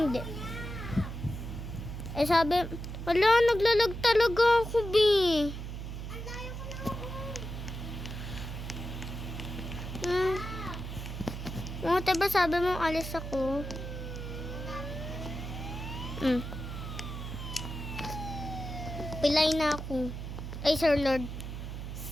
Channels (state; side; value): noise; right; hum, 7 dB below the sound